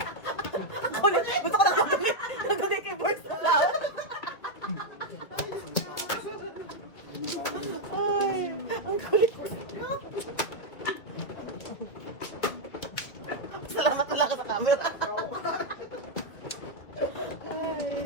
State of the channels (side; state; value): right; late; 2.5 ms